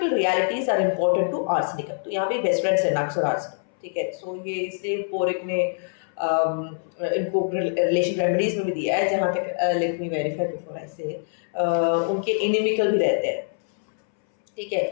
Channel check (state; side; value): silent; right; 62 dB below the other